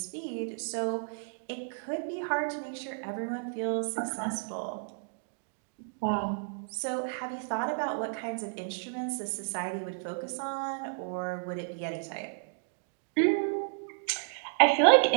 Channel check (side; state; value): left; silent; digital silence